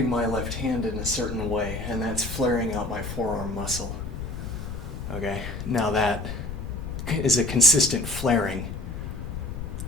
my left hand in a certain way, and that's flaring out my forearm muscle. Okay, now that is a consistent flaring.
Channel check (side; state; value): left; noise; rumble, 8 dB below the sound